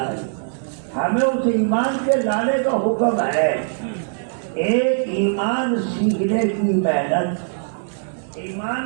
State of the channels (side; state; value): left; silent; digital silence